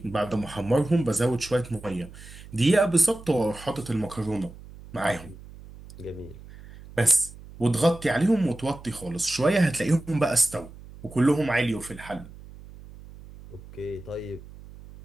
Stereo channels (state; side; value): noise; right; hum, 18 dB below the sound